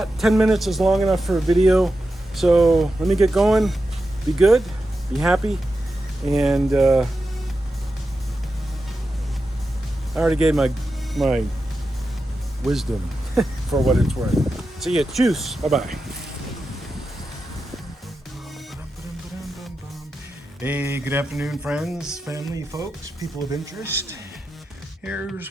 10 minutes is long enough for a video. So let me get going. Be good, be happy, and I already gave my wisdom for what it's worth. See ya. Cheers. Bye-bye. Hey, good afternoon, friends, family, folks, people of interest.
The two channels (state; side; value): normal; both; correlation 0.90